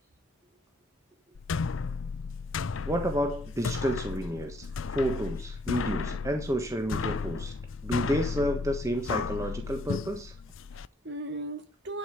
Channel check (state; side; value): normal; both; correlation 0.67